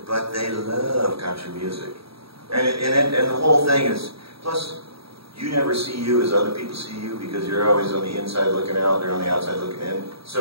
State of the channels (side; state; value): left; late; 0.76 ms